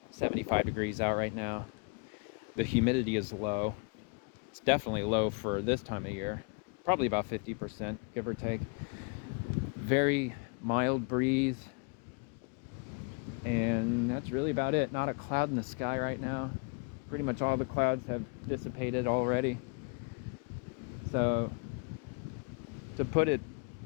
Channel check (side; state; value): right; quieter; 33.3 dB